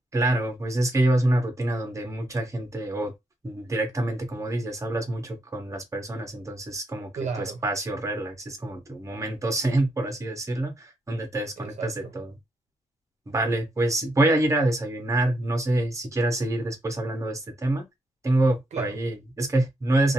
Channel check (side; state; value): both; normal; correlation 0.79